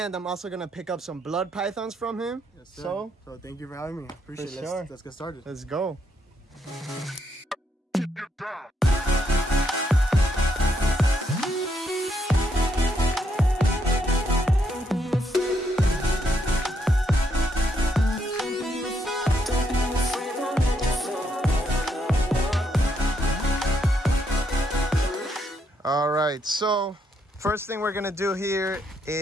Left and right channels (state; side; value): normal; both; correlation 0.76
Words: I'm also gonna pick up some blood pythons from him. Yes, sir. So thank you for having me. Appreciate it. Sure. Let's get started. Let's go. All right, so first thing we're gonna do here